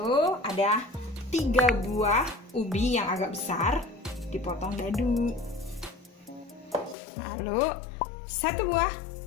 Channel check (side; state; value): right; drops out; at 7.0 s